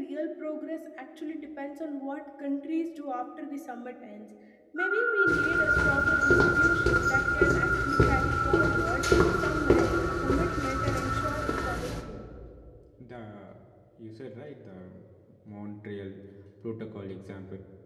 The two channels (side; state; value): both; identical; correlation 1.00